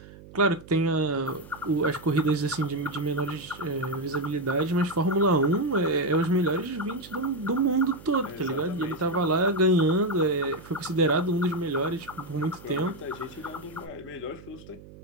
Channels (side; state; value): right; noise; hum, 19 dB below the sound